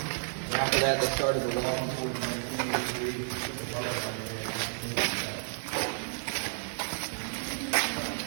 And after that, they started the walking towards 1983.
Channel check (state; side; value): silent; left; digital silence